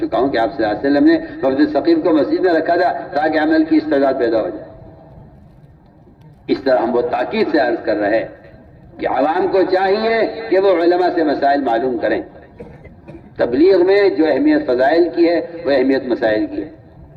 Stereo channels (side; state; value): both; identical; correlation 1.00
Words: ہوں کہ آپ صلی اللہ علیہ وسلم نے وفد ثقیف کو مسجد میں رکھا تھا تاکہ عمل کی استعداد پیدا ہو جائے۔ اس طرح ہم وہ تاکید سے عرض کر رہے کہ عوام کو چاہیے کہ وہ علماء سے مسائل معلوم کریں۔ تبلیغ میں جو اہمیت فضائل کی ہے وہ اہمیت مسائل کی ہے۔